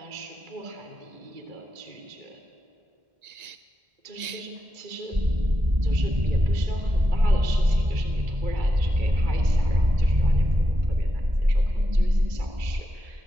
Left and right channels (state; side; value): late; left; 1.9 ms